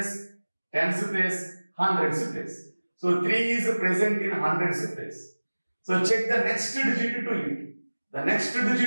tens place, hundreds place. So, 3 is present in hundreds place. So, check the next digit to it. The next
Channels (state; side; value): inverted; both; correlation -1.00